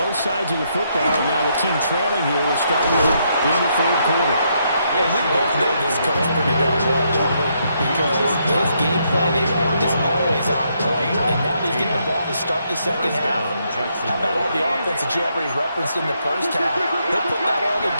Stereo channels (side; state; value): both; inverted; correlation -0.76